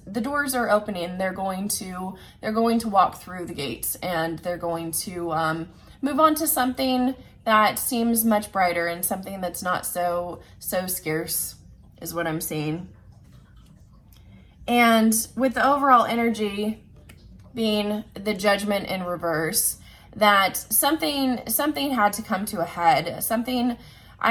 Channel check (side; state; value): both; identical; correlation 1.00